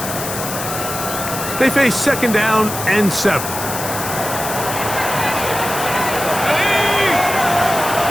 They face second down and 7.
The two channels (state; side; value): noise; left; hiss, 6 dB below the sound